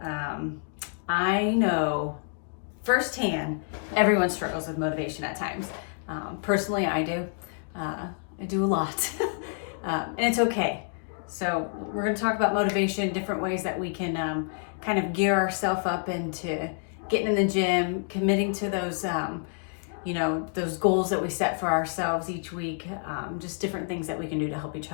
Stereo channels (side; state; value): right; silent; 59 dB below the other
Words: I know firsthand everyone struggles with motivation at times. Personally, I do. I do a lot, and it's okay. So we're going to talk about motivation, different ways that we can kind of gear ourselves up into getting in the gym, committing to those those goals that we set for ourselves each week, just different things that we can do to help each